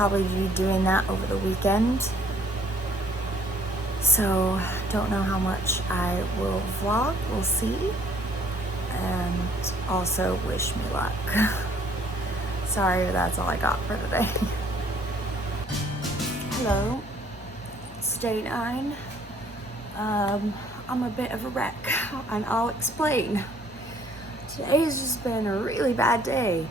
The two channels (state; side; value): normal; both; correlation 0.61